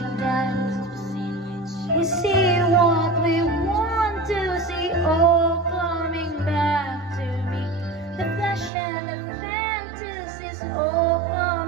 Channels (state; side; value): drops out; left; at 8.7 s